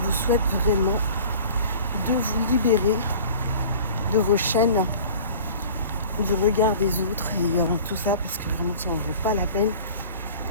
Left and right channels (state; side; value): inverted; both; correlation -0.43